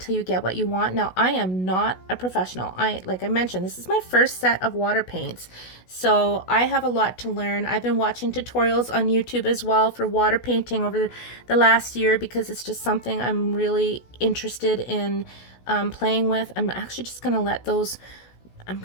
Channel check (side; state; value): right; late; 16 ms